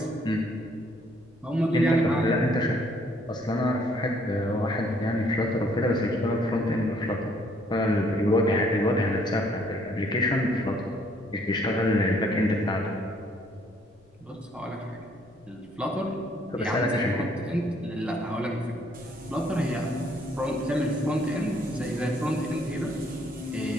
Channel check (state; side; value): noise; left; rumble, 29 dB below the sound